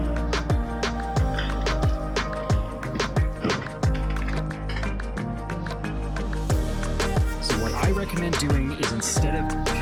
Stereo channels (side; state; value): both; identical; correlation 1.00